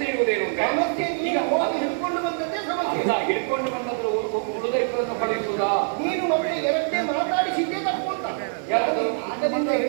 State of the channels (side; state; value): left; silent; digital silence